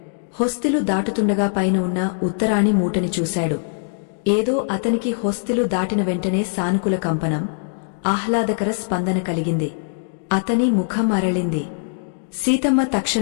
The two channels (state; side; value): silent; right; digital silence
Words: హొస్తిలు దాటుతుండగా పైన ఉన్న ఉత్తరాణి మూటని చూశాడు. ఏదో అతనికి హొస్తిలు దాటిన వెంటనే సానుకూల కంపనం, ఆహ్లాదకర స్పందన కలిగింది. అతని ముఖం అరళింది. సీతమ్మ